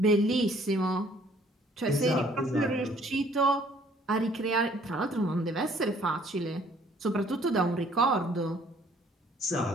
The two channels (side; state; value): both; normal; correlation 0.60